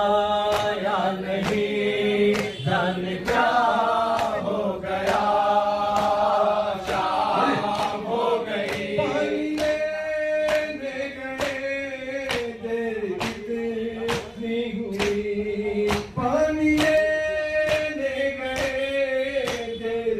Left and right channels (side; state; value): both; identical; correlation 1.00